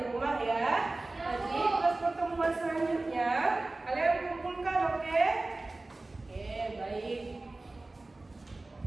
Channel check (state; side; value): quieter; left; 3.1 dB